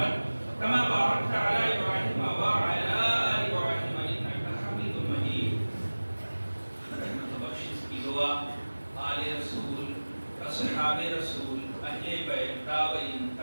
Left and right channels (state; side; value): inverted; both; correlation -1.00